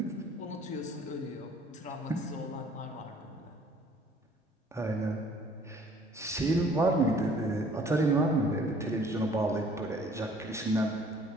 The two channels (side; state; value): both; normal; correlation 0.56